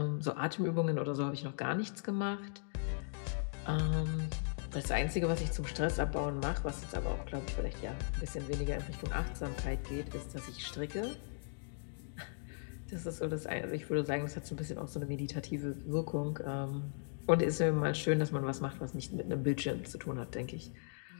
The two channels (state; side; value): silent; right; digital silence